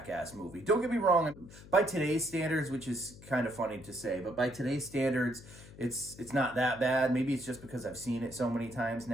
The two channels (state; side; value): noise; left; hum, 18 dB below the sound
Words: movie. Don't get me wrong, by today's standards, which is kind of funny to say, but by today's standards, it's not that bad. Maybe it's just because I've seen it so many times